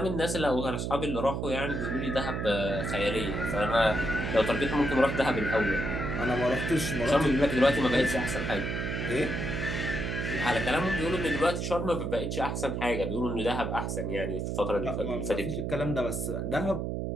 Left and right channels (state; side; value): noise; right; hum, 2 dB below the sound